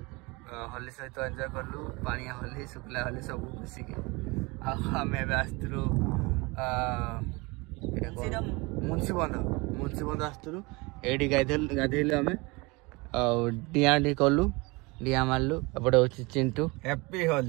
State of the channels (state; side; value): quieter; left; 25.6 dB